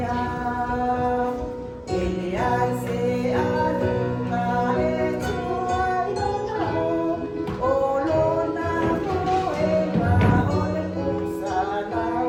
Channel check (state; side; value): identical; both; correlation 1.00